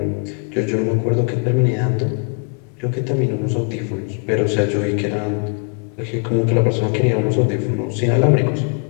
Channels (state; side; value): quieter; right; 39.1 dB